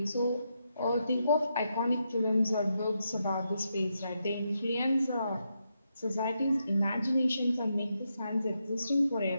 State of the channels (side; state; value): both; inverted; correlation -0.83